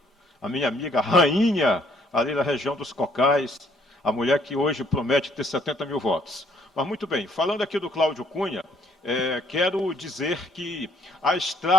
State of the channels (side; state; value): both; normal; correlation 0.65